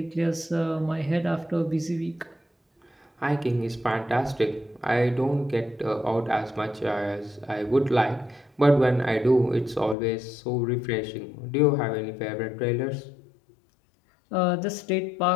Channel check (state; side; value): drops out; right; at 10.0 s